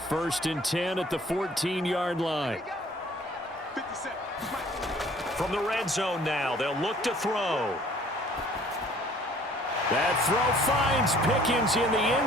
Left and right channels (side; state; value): both; normal; correlation 0.55